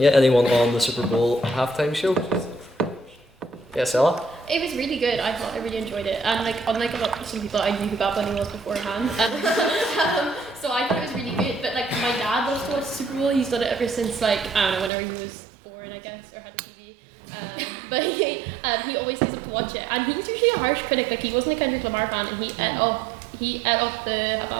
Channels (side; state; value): left; drops out; at 14.9 s